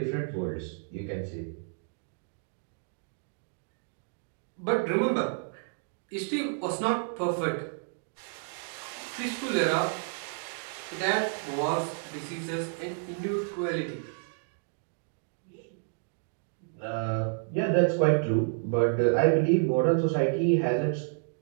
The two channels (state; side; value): silent; left; digital silence